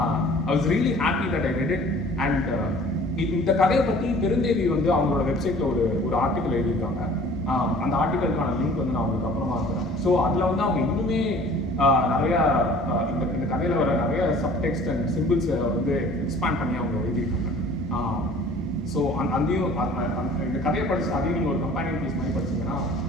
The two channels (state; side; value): normal; both; correlation 0.49